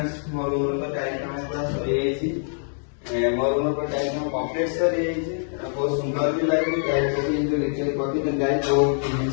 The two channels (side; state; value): right; silent; digital silence